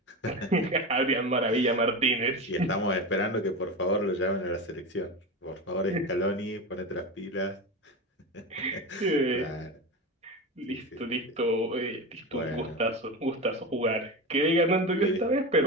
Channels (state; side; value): normal; both; correlation 0.23